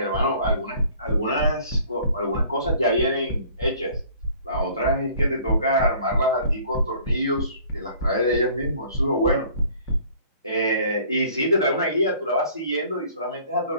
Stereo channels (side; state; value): both; inverted; correlation -0.54